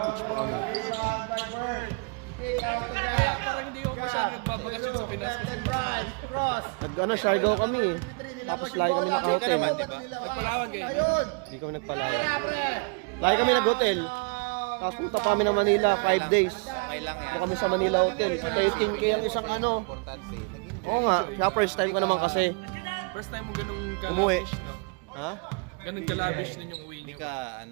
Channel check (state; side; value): quieter; left; 33.9 dB